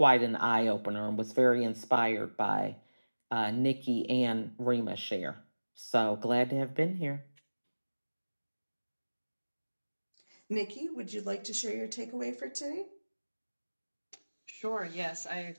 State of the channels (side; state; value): both; inverted; correlation -1.00